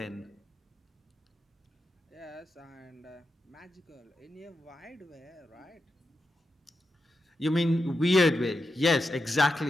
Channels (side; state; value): both; normal; correlation 0.88